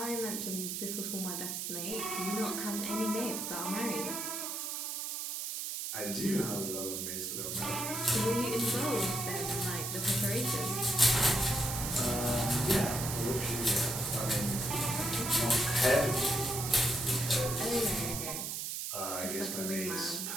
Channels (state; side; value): noise; right; hiss, 3 dB below the sound